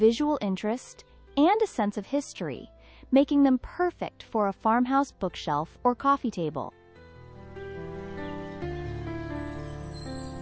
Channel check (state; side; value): identical; both; correlation 1.00